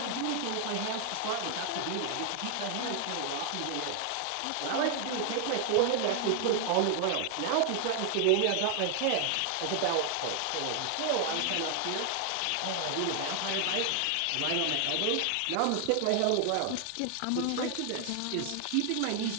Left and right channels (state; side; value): different; both; correlation 0.00